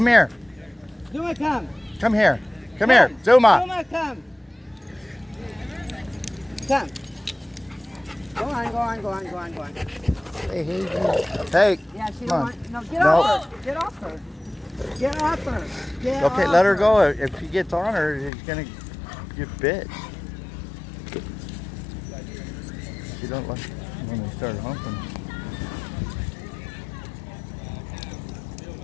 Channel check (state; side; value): drops out; right; at 18.3 s